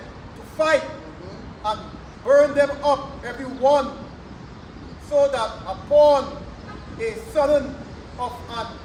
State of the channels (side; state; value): both; identical; correlation 1.00